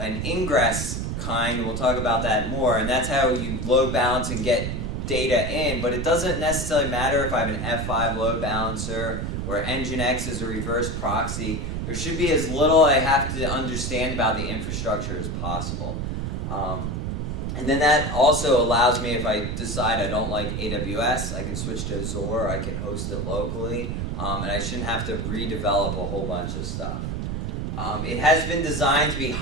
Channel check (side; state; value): right; noise; rumble, 3 dB below the sound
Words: Ingress kind, we'll talk about that more, and that's how you load balance and get data in, but it doesn't necessarily matter if I have an F5 load balancer or Nginx is a reverse proxy. There should be as little I have to understand about the infrastructure as possible. And then that also allows me, if I decide I don't like AWS, I can switch to Azure, I can host it locally, and I shouldn't have to redevelop a whole bunch of stuff. It has been designed to be